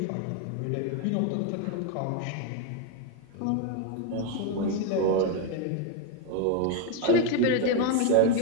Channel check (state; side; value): different; both; correlation 0.01